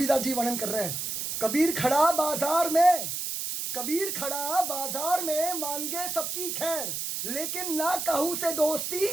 जी वर्णन कर रहे हैं, कबीर खड़ा बाजार में मांगे सबकी खैर, लेकिन ना कहू से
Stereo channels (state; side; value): noise; right; hiss, 3 dB below the sound